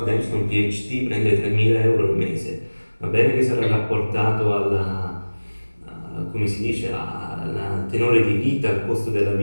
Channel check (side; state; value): both; inverted; correlation -1.00